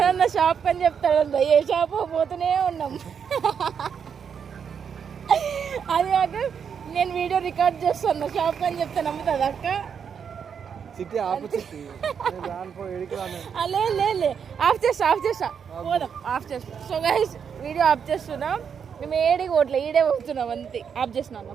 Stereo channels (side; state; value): left; quieter; 7.1 dB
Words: షాప్ అని చెప్తాడు. ఏ షాప్ పోతూనే ఉన్నాం. అది కాక నేను వీడియో రికార్డ్ చేస్తాను షాప్ అని చెప్తే నమ్ముతుంది అక్క. చిట్టి ఆపు చిట్టి. లే ఆఫ్ చేస్తా పోదాం. ఆఫ్ చేస్తా. సో గైస్ వీడియో ఆఫ్ చేస్తున్నాం. మేము ఏడికి ఓట్లే ఈడే పోతున్నాం అంతే. ఆఫ్ చేసినా అన్న